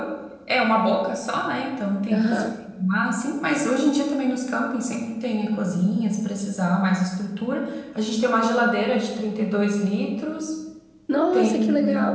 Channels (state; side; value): identical; both; correlation 1.00